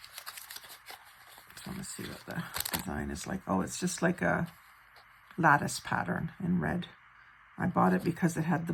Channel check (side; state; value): both; identical; correlation 1.00